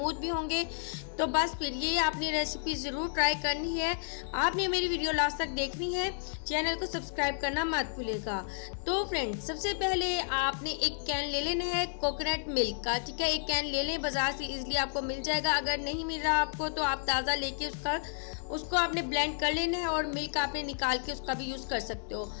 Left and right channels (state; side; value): silent; right; digital silence